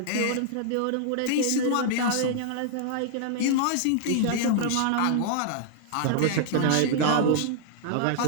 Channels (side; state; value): both; different; correlation -0.01